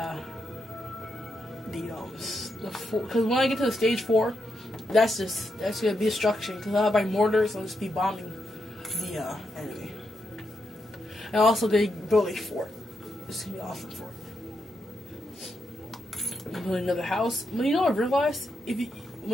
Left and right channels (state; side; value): normal; both; correlation 0.83